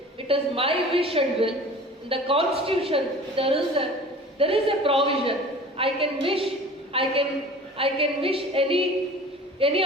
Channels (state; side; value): normal; both; correlation 0.42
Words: It is my wish and will. In the constitution, there is a provision. I